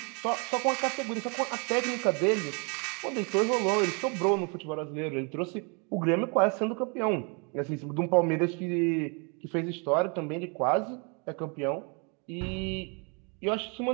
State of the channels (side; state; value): left; quieter; 34.7 dB